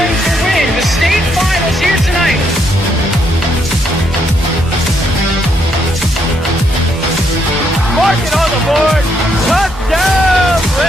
to win the state finals here tonight. Mark it on the board. Touchdown,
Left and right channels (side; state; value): both; normal; correlation 0.75